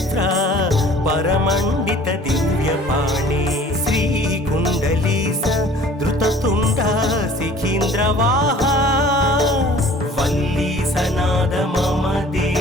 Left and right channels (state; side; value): normal; both; correlation 0.50